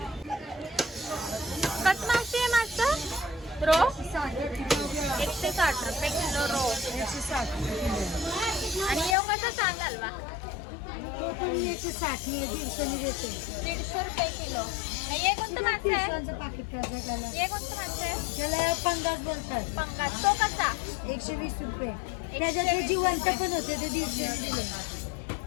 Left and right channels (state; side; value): drops out; right; at 9.2 s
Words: कसं मावशी आहे मागचं? रो 160 रुपये किलो रो. 160. आणि येऊ कसा चांद हलवा? तो तुम्ही 160 150 देते. 150 रुपये किलो. हे कोणतं मासे आहे? पिशवांचं पाकिट करायचं त्याला. हे कोणतं मासे आहे? त्याला पंगास बोलतात. पंगास. तो कसा? 120 रुपये. त्याच्यात ते जिवंत पण होते ते 150 दिले.